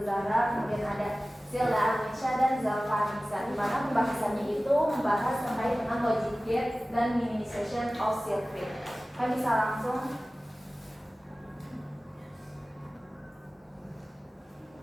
Zahra, kemudian ada Zilda Arnisha dan Zalfa Nisa, di mana pembahasannya itu membahas terkait dengan logic gate dan minimization of circuit. Kami bisa langsung.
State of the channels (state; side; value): normal; both; correlation 0.97